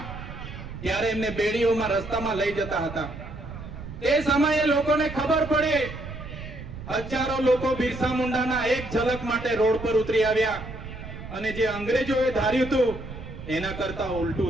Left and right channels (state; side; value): noise; right; rumble, 11 dB below the sound